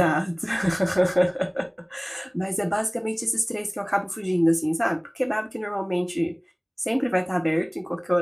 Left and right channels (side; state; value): both; identical; correlation 1.00